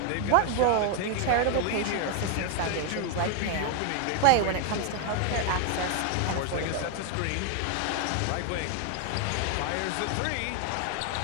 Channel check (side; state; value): both; different; correlation 0.00